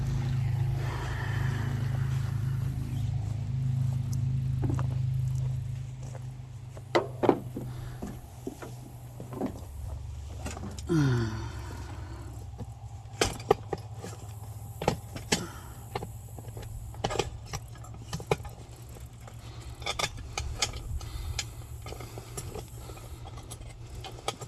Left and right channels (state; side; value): identical; both; correlation 1.00